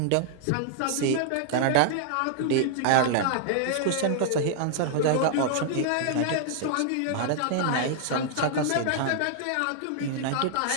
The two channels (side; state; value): both; different; correlation -0.01